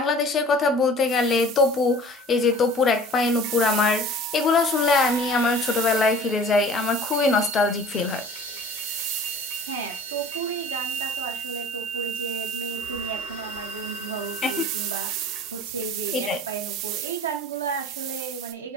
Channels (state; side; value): normal; both; correlation 0.45